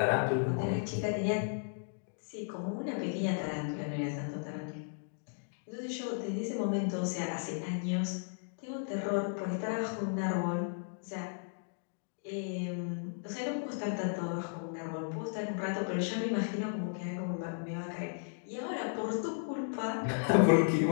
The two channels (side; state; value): right; silent; digital silence